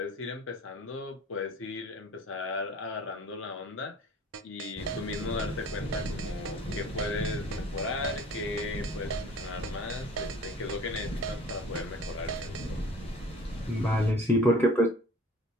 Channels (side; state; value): both; normal; correlation 0.46